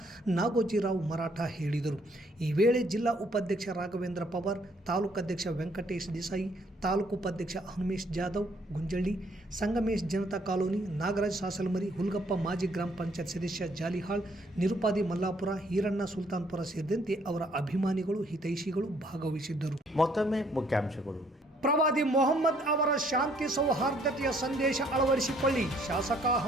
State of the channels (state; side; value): normal; both; correlation 0.65